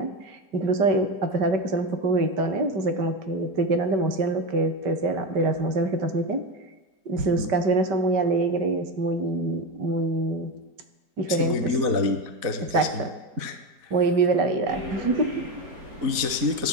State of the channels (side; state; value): left; late; 4.1 ms